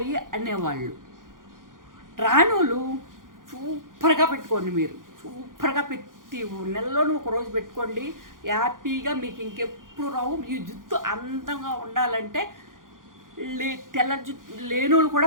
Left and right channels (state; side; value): late; left; 0.90 ms